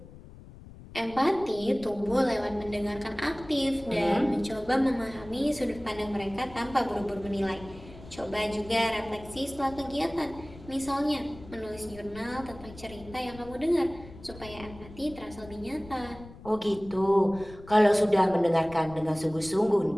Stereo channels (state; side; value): noise; left; rumble, 18 dB below the sound